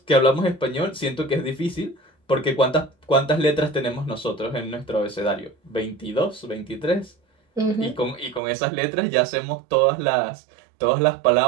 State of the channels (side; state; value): left; drops out; at 8.4 s